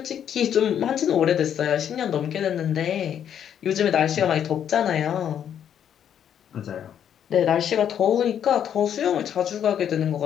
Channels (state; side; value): quieter; right; 9.2 dB